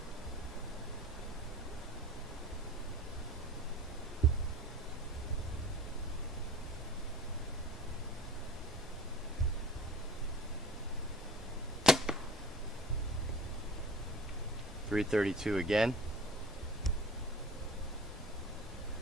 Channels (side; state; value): both; normal; correlation 0.40